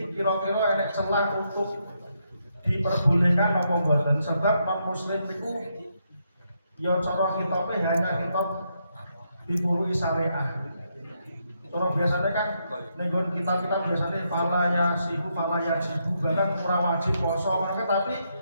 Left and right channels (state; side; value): inverted; both; correlation -0.79